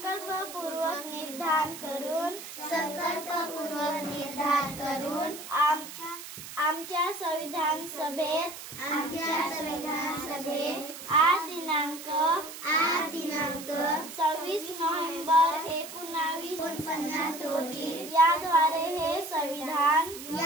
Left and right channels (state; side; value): noise; right; hiss, 12 dB below the sound